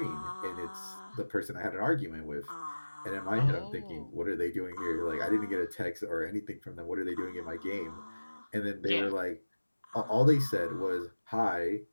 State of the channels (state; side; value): inverted; both; correlation -1.00